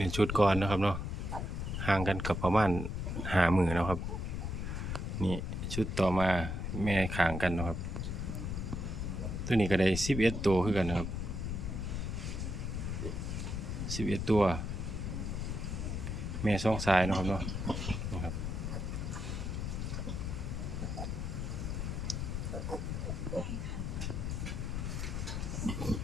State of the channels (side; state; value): left; noise; rumble, 3 dB below the sound